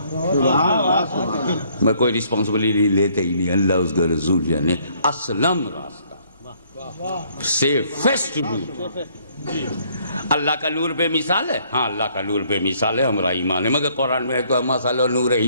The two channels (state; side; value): inverted; both; correlation -0.64